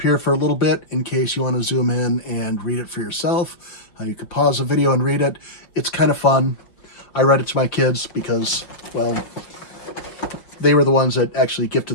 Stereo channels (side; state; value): right; late; 5.6 ms